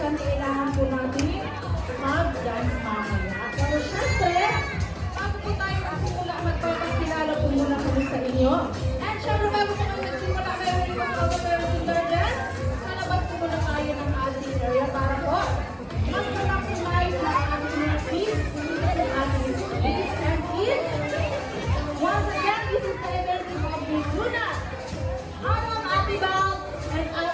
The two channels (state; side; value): identical; both; correlation 1.00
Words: kailangan po natin mag-dance mamaya. Pero syempre, bago po tayo magsimula, magpapakilala po muna kami sa inyo. And syempre, bago po kami nagsimula, meron yung mga kapatid dance. Kalabas po muna tayo ng ating area para po mag-maximize na ating mga kids, ang ating kids and kids. Once again, this is the event of Miss Luna. I'm Ate Bal, and I